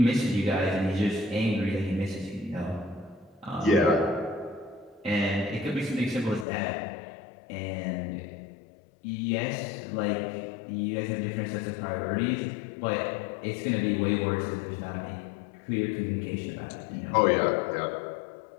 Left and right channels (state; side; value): drops out; right; at 6.5 s